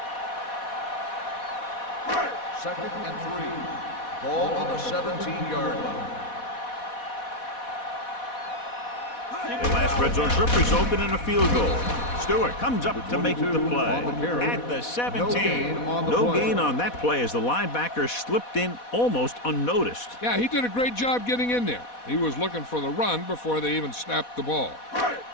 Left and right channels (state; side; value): late; right; 4.1 ms